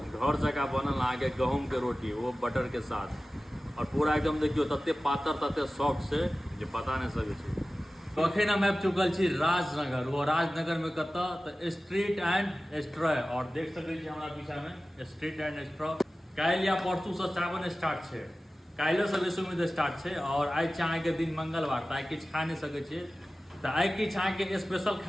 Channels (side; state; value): both; normal; correlation 0.96